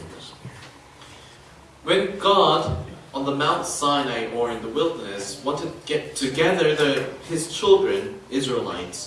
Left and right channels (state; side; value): identical; both; correlation 1.00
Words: When God on the Mount Sinai or in the wilderness wanted to get together his children,